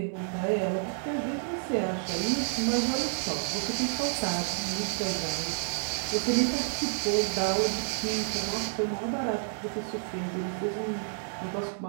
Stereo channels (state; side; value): silent; left; 58 dB below the other